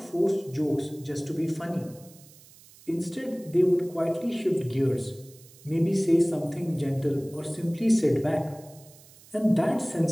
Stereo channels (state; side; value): noise; right; hiss, 24 dB below the sound